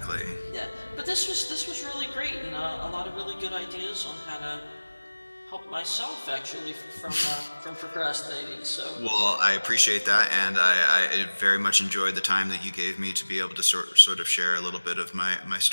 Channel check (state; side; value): inverted; both; correlation -1.00